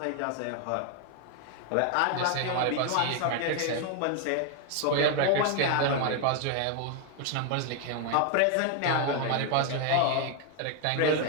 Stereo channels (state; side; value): different; both; correlation 0.00